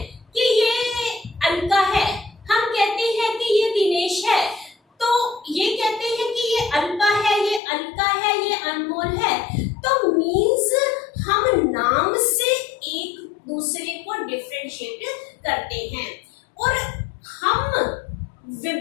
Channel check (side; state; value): right; drops out; at 7.6 s